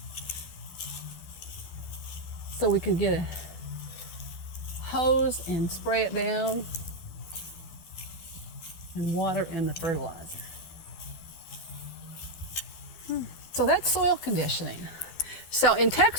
so we could get a hose and spray it down and water in the fertilizer. So that's soil conditioning. So in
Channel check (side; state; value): right; late; 12 ms